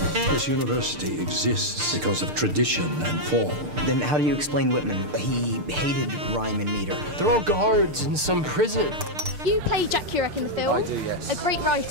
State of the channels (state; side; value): late; left; 6.7 ms